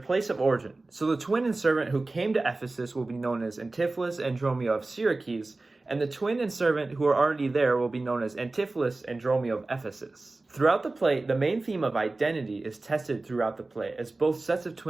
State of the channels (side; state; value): left; quieter; 3.2 dB